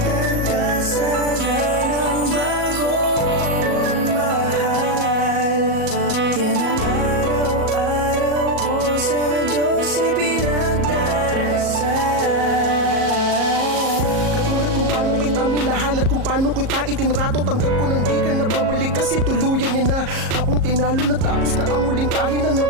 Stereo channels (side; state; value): left; late; 37 ms